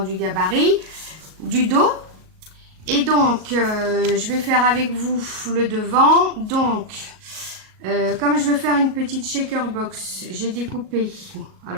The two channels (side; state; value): left; late; 38 ms